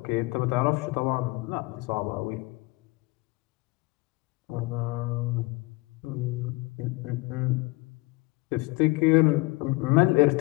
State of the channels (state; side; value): quieter; right; 23.1 dB